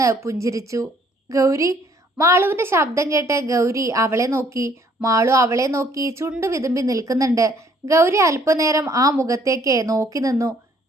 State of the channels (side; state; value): both; normal; correlation 0.62